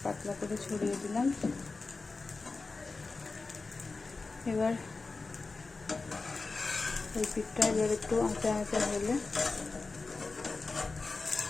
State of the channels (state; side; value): quieter; right; 3.9 dB